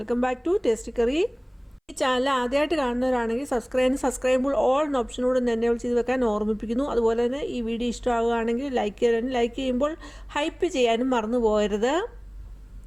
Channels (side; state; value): both; identical; correlation 1.00